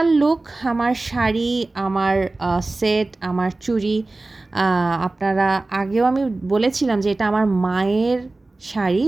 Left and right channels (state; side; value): quieter; left; 3.1 dB